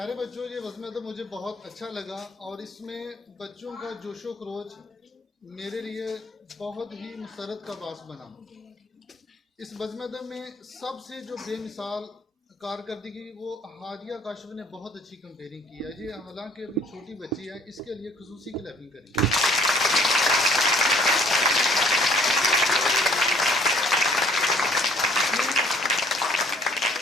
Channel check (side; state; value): both; normal; correlation 0.58